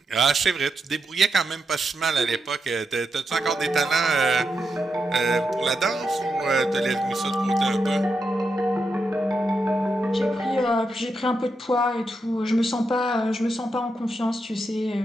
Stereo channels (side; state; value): both; normal; correlation 0.85